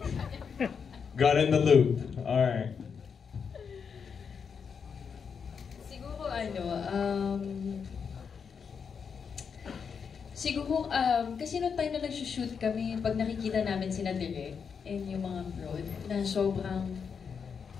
Got in the loop. Alright. Siguro, kasi noong time na nag-shoot kami, pag nakikita namin sina Derek and yung mga broad, na sobrang,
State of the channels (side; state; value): right; quieter; 6.3 dB